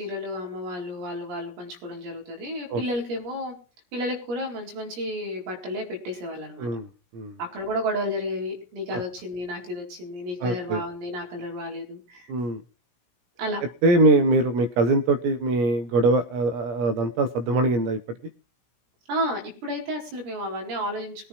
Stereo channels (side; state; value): left; late; 17 ms